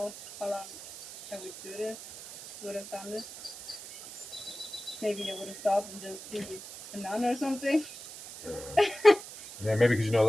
how long I would do this. Would have done this. Maybe I would have stopped and just be a nun or something. Yeah, maybe because you know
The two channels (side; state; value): right; noise; hiss, 13 dB below the sound